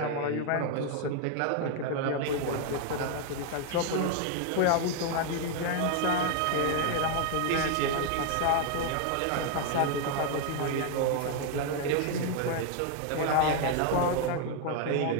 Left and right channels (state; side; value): different; both; correlation 0.00